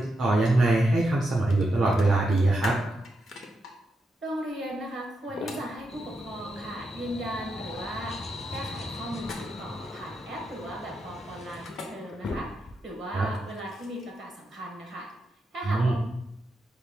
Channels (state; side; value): normal; both; correlation 0.84